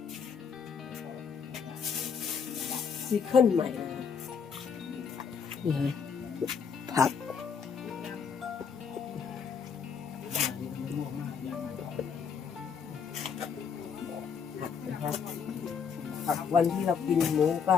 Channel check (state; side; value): quieter; right; 6.4 dB